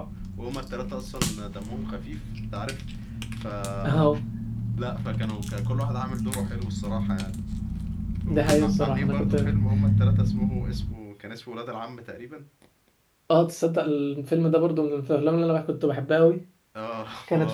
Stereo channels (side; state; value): both; identical; correlation 1.00